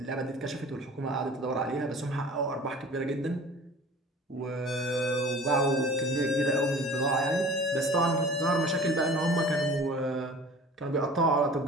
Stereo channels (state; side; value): normal; both; correlation 0.43